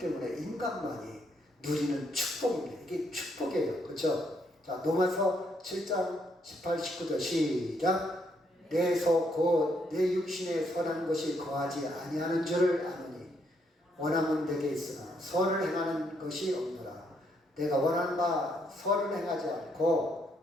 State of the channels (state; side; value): normal; both; correlation 0.73